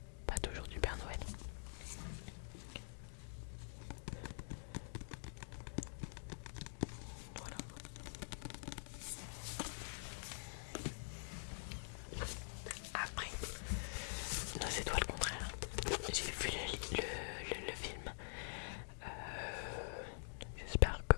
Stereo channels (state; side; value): silent; right; digital silence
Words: pas toujours du Père Noël. Voilà. Après, non, c'est toi le contraire. J'ai vu le film. J'espère que